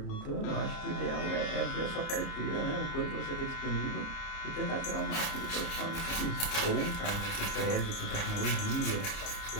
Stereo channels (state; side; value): late; right; 30 ms